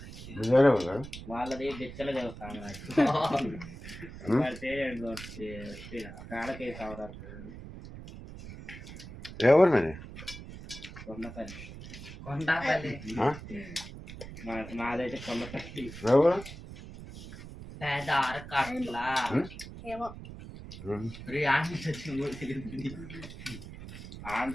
వేరే ఊరు కదా. వాళ్ళది బెచ్చలు చదువుతాను కాళ్ళకే సవరాలు ఏ ఊరు మీది? కొండపల్లి. కొండపల్లి మాదైతే కొండపల్లి. ఏ ఊరు? పెద్ద అరకట్ల ఏమో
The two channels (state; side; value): noise; right; rumble, 13 dB below the sound